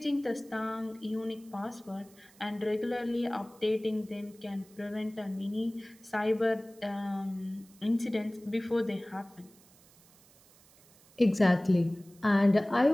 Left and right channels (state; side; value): noise; right; hiss, 27 dB below the sound